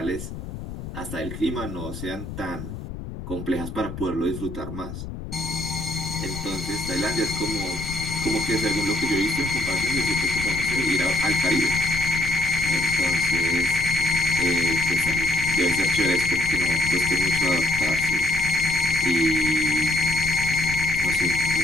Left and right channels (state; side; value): noise; left; rumble, 9 dB below the sound